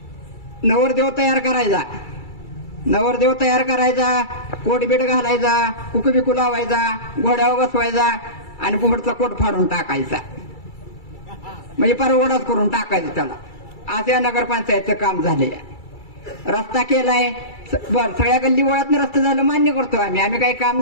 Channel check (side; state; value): right; late; 2.3 ms